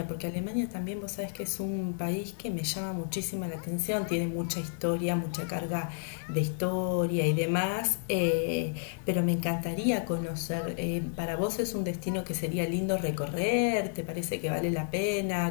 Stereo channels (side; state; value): right; silent; digital silence